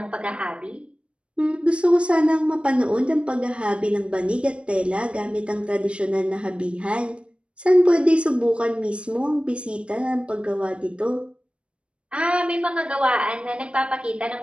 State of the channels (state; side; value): late; left; 0.058 ms